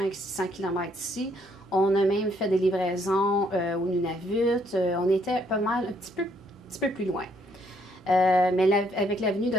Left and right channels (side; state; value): both; normal; correlation 0.69